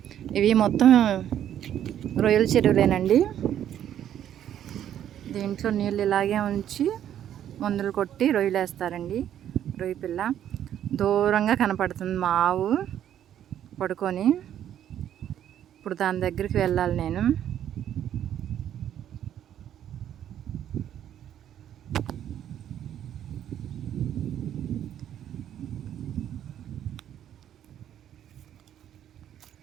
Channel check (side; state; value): left; quieter; 10.5 dB